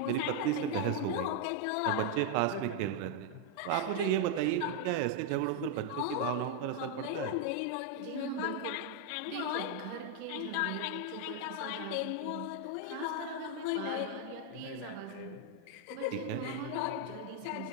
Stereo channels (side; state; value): both; different; correlation 0.00